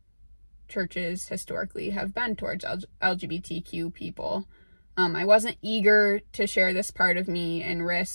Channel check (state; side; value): inverted; both; correlation -1.00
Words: churches historically have been towards LGBTQ people. I wasn't eager to share this part of me and